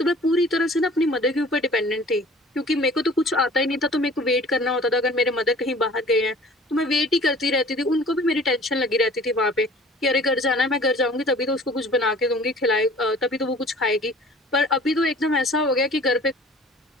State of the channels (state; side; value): normal; both; correlation 0.48